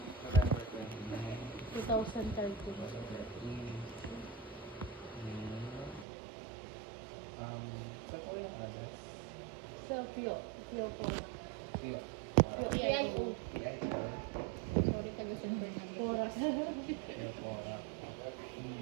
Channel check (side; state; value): left; drops out; at 6.1 s